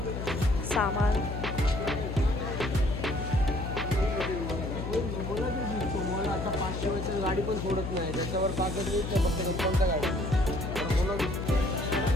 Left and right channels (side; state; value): left; noise; hum, 5 dB below the sound